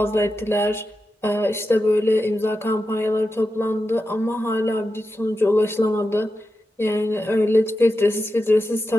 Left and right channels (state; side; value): normal; both; correlation 0.90